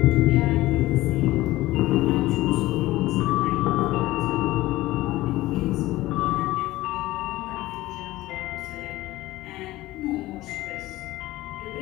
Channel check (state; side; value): quieter; right; 17.6 dB